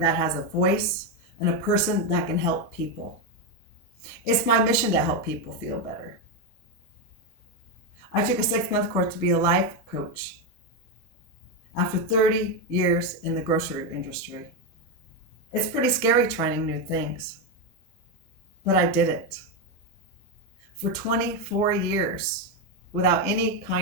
has a voice, and a person that can help people. It's my mission to help people feel better. I took a 6-month course to be a life coach after 30 years in the grocery industry. It's pretty scary trying new things, but I did it. For 24 years, without any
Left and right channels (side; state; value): both; normal; correlation 0.08